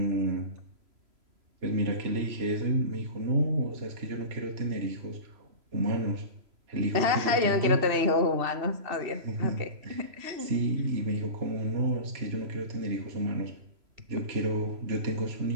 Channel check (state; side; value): late; left; 3.0 ms